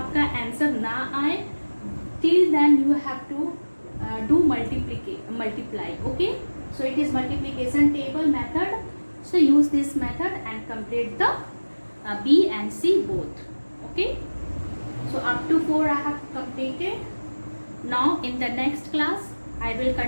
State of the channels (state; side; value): inverted; both; correlation -1.00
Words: आंसर ना आए, till then you have to do multiply. Okay, so it is multiplication table method. So use this method and complete the B and C both. Okay, so up to 4 I have completed. Now in the next class I will